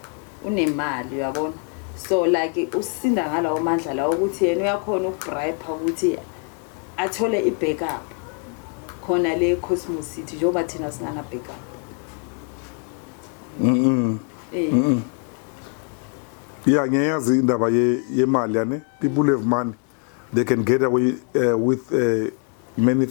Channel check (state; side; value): quieter; right; 39.1 dB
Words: unemali uyabona so like usinda ngalawo mandla la ukuthi yena uyakhona ukubribe ukuthi athole ibackup khona le Cosmos City njengoba thina singana backup yeah ngiyazi indaba yemali yane people have money they can get away with many